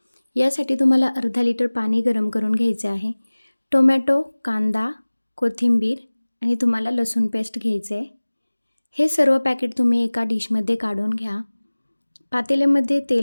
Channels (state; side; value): inverted; both; correlation -1.00